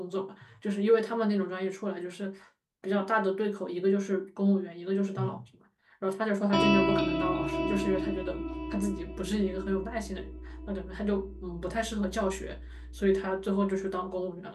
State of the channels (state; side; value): identical; both; correlation 1.00